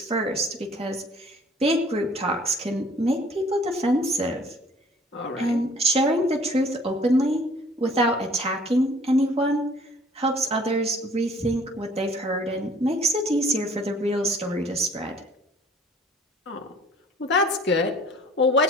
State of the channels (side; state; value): both; normal; correlation 0.53